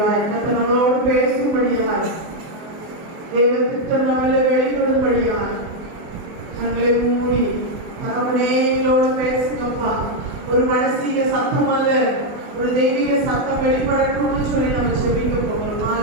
கர்த்தர் நம்மளோடு பேசும்படியாய், தேவ திட்டம் நம்மள வெளிப்படும்படியாய் தங்களை மூடி தகவனே எங்களோடு பேசுங்கப்பா. ஒரு மனசீக சத்தம் அல்ல, ஒரு தெய்வீக சத்தம் வெளிப்படணும்னு சொல்லி நம்ம செபிக்க போகிறோம்.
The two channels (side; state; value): left; late; 24 ms